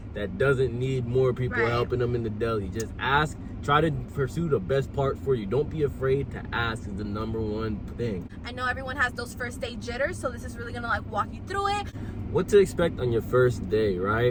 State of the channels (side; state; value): both; identical; correlation 1.00